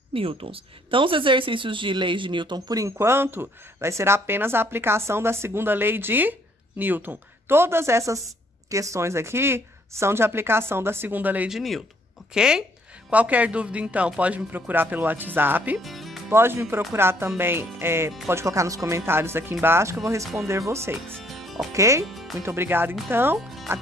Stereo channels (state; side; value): normal; both; correlation 0.65